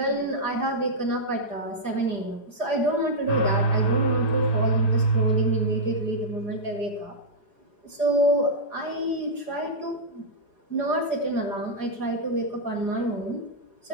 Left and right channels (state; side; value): late; right; 4.8 ms